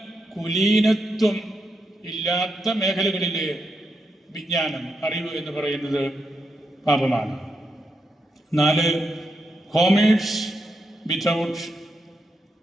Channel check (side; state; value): both; normal; correlation 0.83